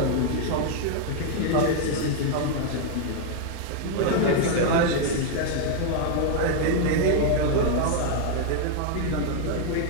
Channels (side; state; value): both; different; correlation 0.00